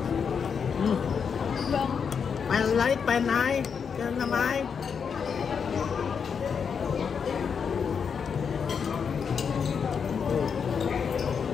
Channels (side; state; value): right; quieter; 6.5 dB